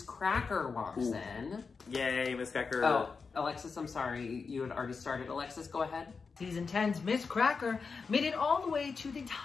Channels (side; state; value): right; quieter; 5.0 dB